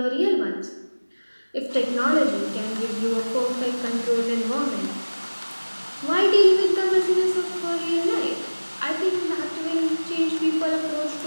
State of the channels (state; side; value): inverted; both; correlation -1.00